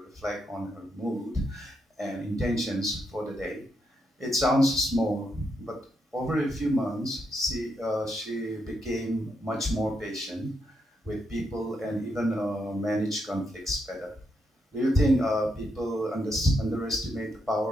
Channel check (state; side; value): normal; both; correlation 0.80